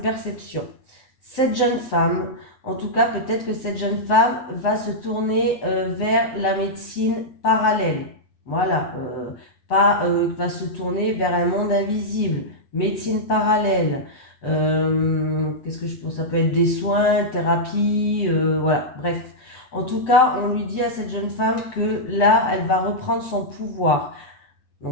Cette jeune femme, en tout cas, peut-être que cette jeune femme va se tourner vers la médecine parallèle. Voilà. Pas va se tourner vers un monde invisible. Médecine parallèle. Qu'est-ce que je pense? Ça peut être des soins, thérapie, voilà, bref. En tout cas, on lui dit à cette jeune femme que là, elle va reprendre son pouvoir.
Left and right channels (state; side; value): late; right; 7.9 ms